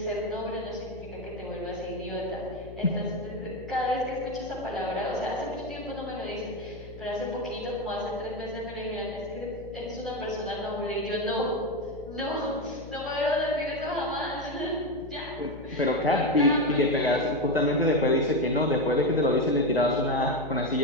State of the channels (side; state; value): left; noise; hum, 15 dB below the sound